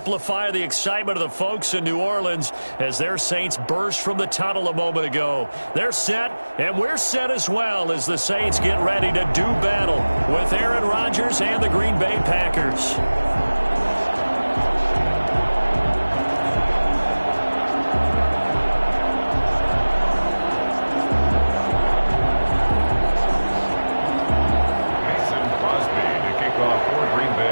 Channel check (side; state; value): both; inverted; correlation -1.00